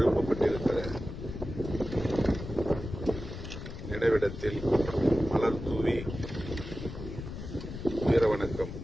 நினைவிடத்தில் மலர் தூவி வீர வணக்கம்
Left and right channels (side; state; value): left; noise; rumble, 9 dB below the sound